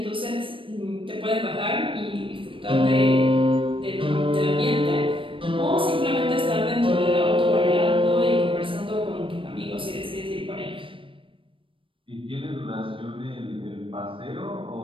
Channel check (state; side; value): late; left; 0.25 ms